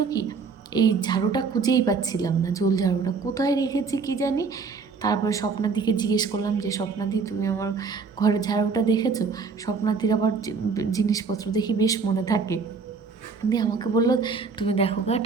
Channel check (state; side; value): quieter; left; 5.0 dB